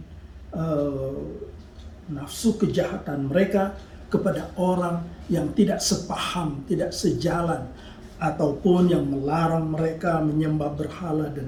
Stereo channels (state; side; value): identical; both; correlation 1.00